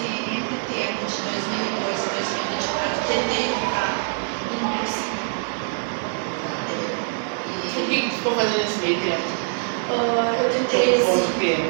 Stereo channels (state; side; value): silent; left; 63 dB below the other